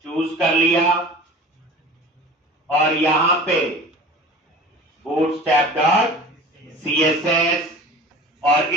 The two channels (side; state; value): both; normal; correlation 0.40